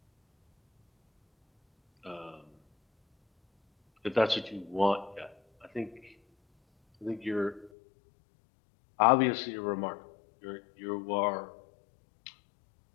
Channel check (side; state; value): right; drops out; at 7.7 s